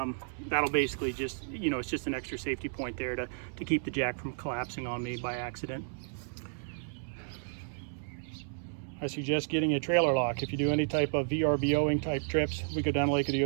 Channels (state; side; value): silent; left; digital silence